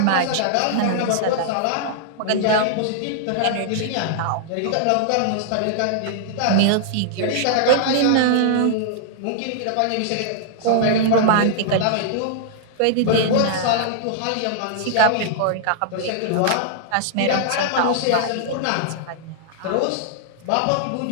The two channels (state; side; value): different; both; correlation -0.01